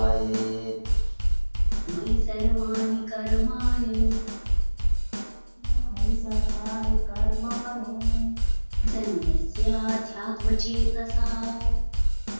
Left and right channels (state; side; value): inverted; both; correlation -1.00